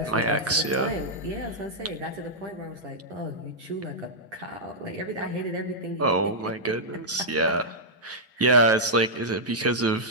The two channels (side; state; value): both; normal; correlation -0.09